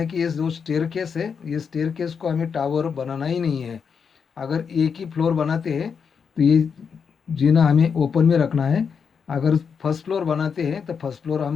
कि ये जो स्टेयर केस है, ये स्टेयर केस को हमें टावर बनाना ही नहीं है। अगर एक ही फ्लोर बनाते हैं तो ये जीना हमें ओपन में रखना है। अगर फर्स्ट फ्लोर बनाते हैं तो फर्स्ट फ्लोर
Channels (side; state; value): right; quieter; 6.3 dB